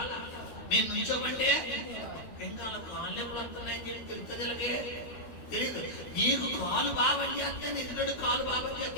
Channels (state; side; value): late; right; 13 ms